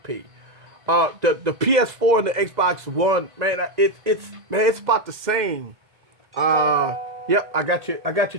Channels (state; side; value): late; left; 2.0 ms